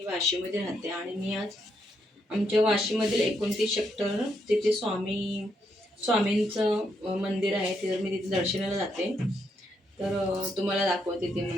वाशीमध्ये राहते आणि मी आज आमच्या वाशीमधील 29 सेक्टर तिथे स्वामींचं मंदिर आहे. तिथं मी तिथे दर्शनाला जाते. तर तुम्हाला दाखवते ते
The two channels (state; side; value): normal; both; correlation 0.78